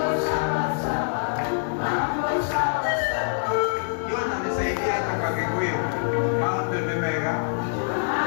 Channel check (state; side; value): silent; right; 62 dB below the other